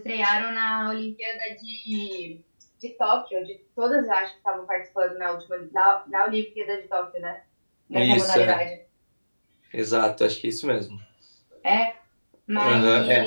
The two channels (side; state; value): both; inverted; correlation -1.00